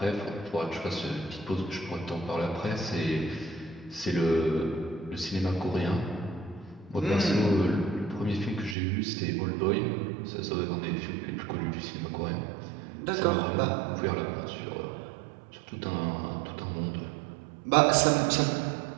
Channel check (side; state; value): left; drops out; at 8.8 s